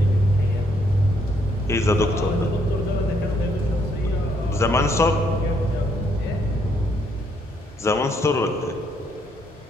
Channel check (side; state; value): both; normal; correlation 0.71